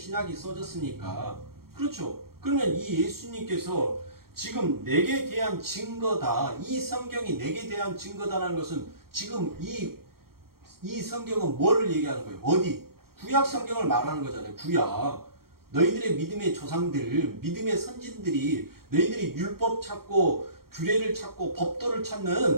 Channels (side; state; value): left; late; 0.94 ms